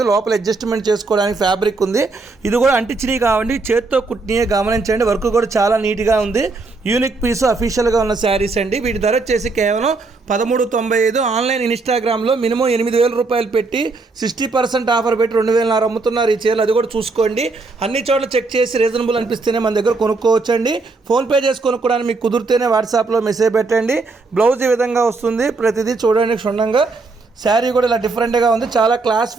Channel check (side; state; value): left; quieter; 3.8 dB